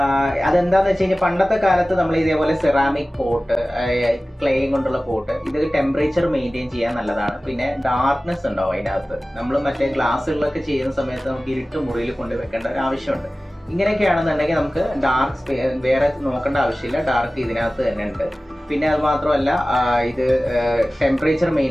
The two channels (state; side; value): normal; both; correlation 0.97